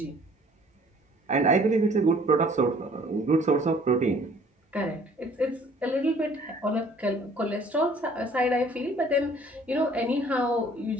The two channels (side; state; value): both; normal; correlation 0.55